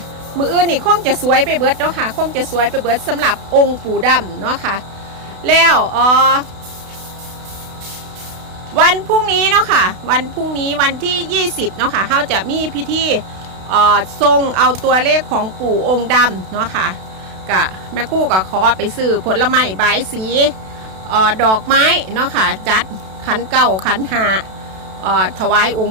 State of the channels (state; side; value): late; left; 32 ms